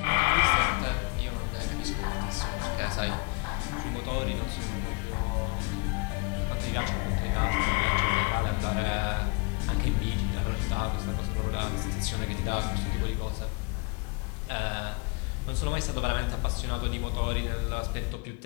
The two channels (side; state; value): right; quieter; 30.5 dB